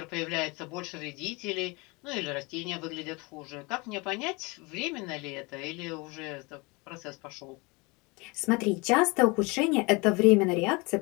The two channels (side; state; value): right; quieter; 26.9 dB